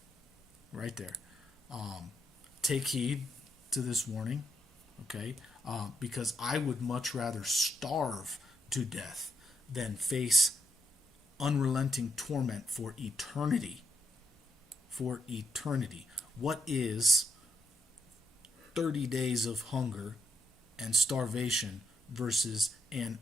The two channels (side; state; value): both; normal; correlation 0.79